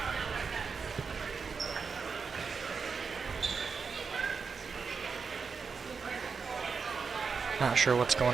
Not sure what's going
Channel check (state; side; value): quieter; left; 5.4 dB